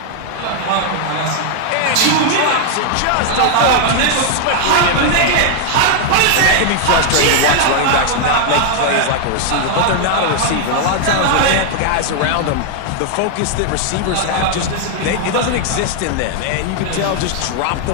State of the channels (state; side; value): different; both; correlation 0.00